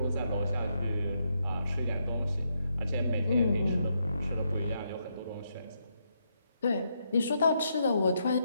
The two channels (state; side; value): inverted; both; correlation -0.79